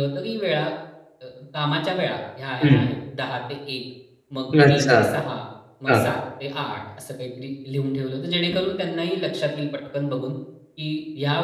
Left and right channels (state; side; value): identical; both; correlation 1.00